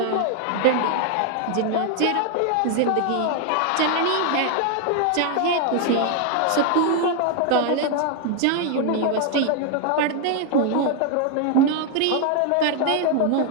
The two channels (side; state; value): both; different; correlation 0.00